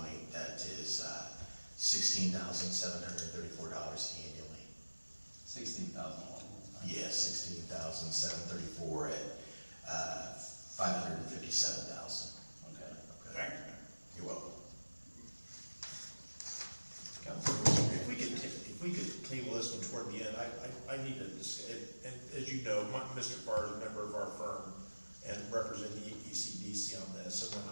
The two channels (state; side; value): inverted; both; correlation -1.00